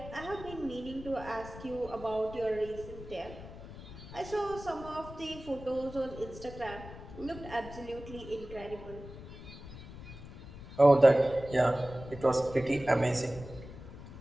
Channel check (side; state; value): left; noise; rumble, 14 dB below the sound